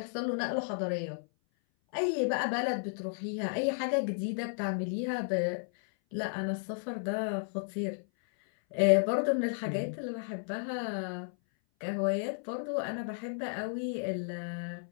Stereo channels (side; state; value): right; silent; 56 dB below the other